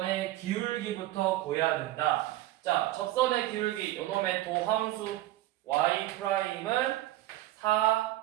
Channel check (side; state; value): left; quieter; 15.7 dB